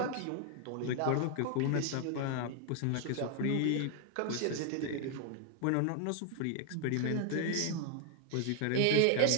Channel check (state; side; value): different; both; correlation 0.00